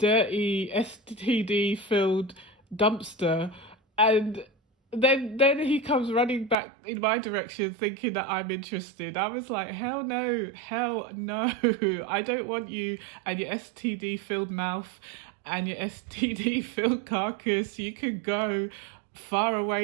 STD filled dumpster, and then he comes running back in my direction thinking that I'm interested. I was like, hell no, I don't want you and your STD filled mouth and your STD filled carcass. You could go far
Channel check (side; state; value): left; drops out; at 6.6 s